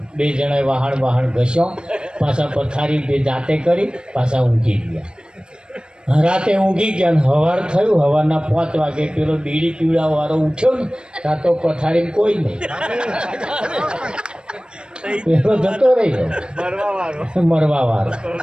2 જણાએ વાહણ ઘસ્યો, પાછા પથારી 2 જાતે કરી, પાછા ઊંઘી ગયા. રાતે ઊંઘી ગયા ને સવાર થયું. સવારના 5 વાગે પેલો બીડી પીવડાવાળો ઉઠ્યો ને, ત્યાં તો પથારીમાં કોઈ નહીં. પેલો જતો રહી ગયો, મરવા વાળો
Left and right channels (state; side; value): late; left; 0.052 ms